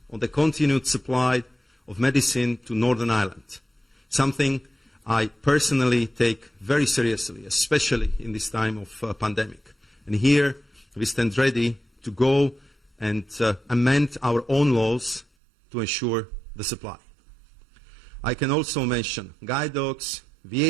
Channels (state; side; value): drops out; left; at 15.2 s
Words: on the continued supply of medicine to Northern Ireland, something I personally take very seriously, especially in this time of pandemic. And here we stand ready to go and amend our own laws to ensure the supply. I can also mention guide dogs,